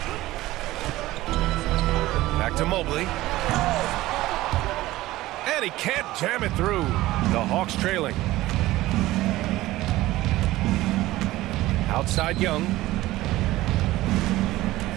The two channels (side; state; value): left; quieter; 17.1 dB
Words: Back to Mobley. And he can't jam it through. The Hawks trailing. Outside Young.